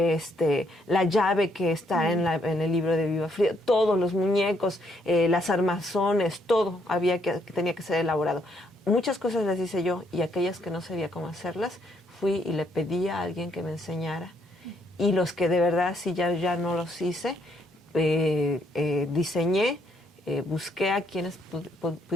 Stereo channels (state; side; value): normal; both; correlation 0.72